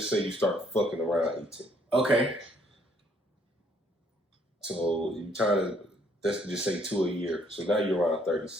say you start fucking around 18. Okay. So you trying to, let's just say 2 a year. So now you're around 30,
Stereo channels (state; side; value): normal; both; correlation 0.65